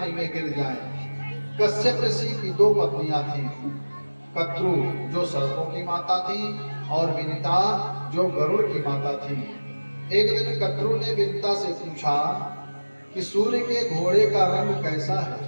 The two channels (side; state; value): both; inverted; correlation -1.00